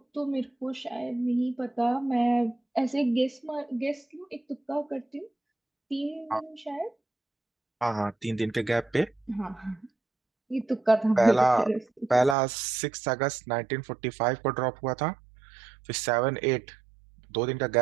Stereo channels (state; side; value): drops out; left; at 12.4 s